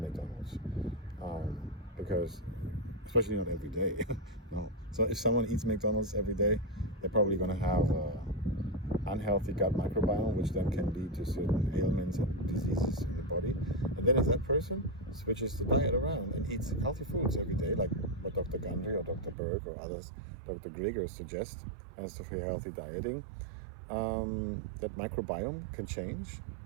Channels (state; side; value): drops out; left; at 19.4 s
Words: because, especially not every day, no. So if someone eats McDonald's every day, they're probably going to have unhealthy gut microbiome, which then can lead to certain ailments and diseases in the body. And then if that person switches the diet around and eats healthy foods every day, like what Dr. Gundry or Dr. Berg or others, Dr. Grieger suggest as for healthy dieting, that microbiome can change